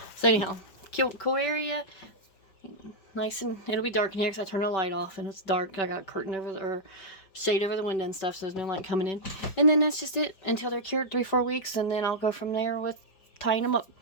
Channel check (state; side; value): late; right; 5.2 ms